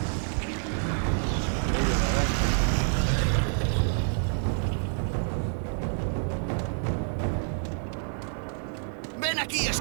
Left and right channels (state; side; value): silent; left; 59 dB below the other